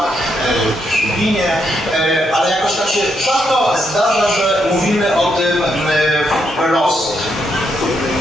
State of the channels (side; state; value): both; normal; correlation 0.78